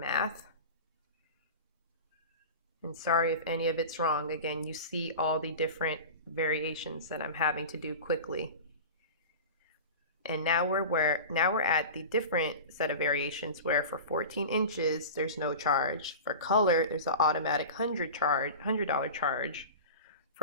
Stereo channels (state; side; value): inverted; both; correlation -0.32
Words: And sorry if any of it's wrong. Again, you see all the different variations that I'm having to do quickly. And now we're at the different set of variations where for 14 inches there's no charge. For color, there's an automatic $100 charge.